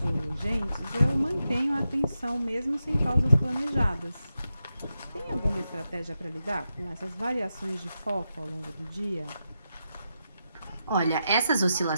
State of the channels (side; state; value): both; inverted; correlation -0.88